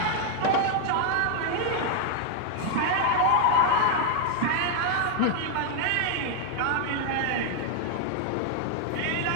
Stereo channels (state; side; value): different; both; correlation 0.00